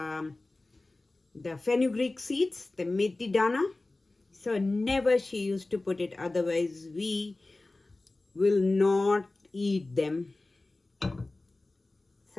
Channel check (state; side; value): quieter; right; 3.0 dB